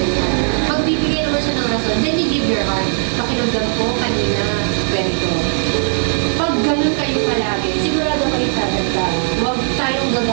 Magbibigay naman siya ng rason, then you give your heart. Pakiramdam ko kanina, ganito. Pag ganun kayo palagi, sigurado kayo tatanda. Huwag tayong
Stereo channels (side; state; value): left; silent; digital silence